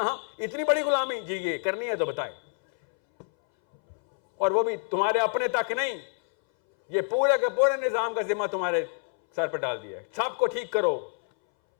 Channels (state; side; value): silent; right; 60 dB below the other